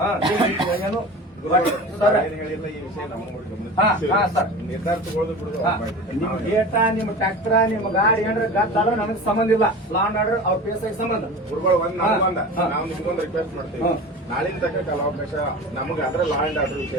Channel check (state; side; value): normal; both; correlation 0.34